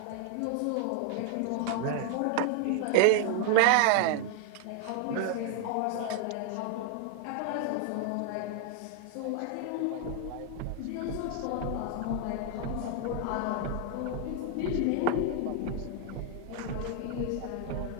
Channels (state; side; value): different; both; correlation 0.00